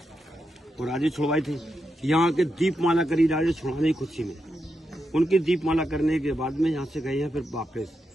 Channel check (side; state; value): both; normal; correlation 0.85